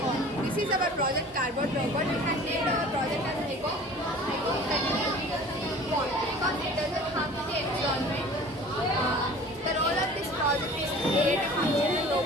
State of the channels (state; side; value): normal; both; correlation 0.44